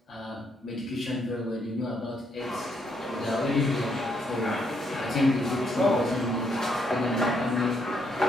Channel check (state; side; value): normal; both; correlation 0.74